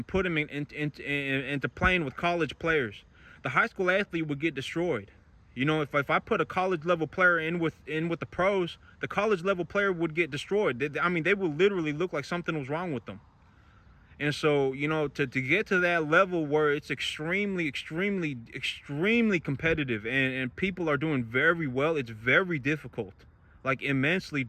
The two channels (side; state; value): both; identical; correlation 1.00